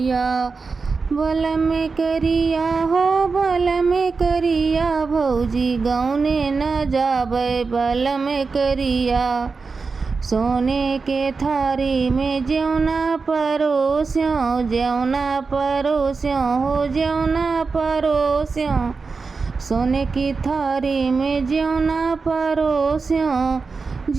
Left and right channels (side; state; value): left; quieter; 4.6 dB